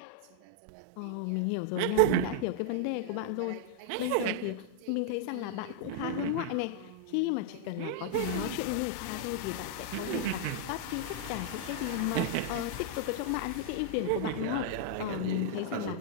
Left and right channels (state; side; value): different; both; correlation -0.01